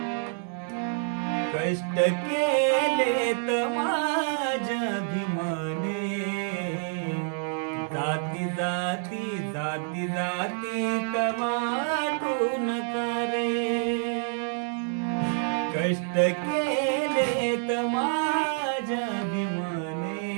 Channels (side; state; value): left; silent; 60 dB below the other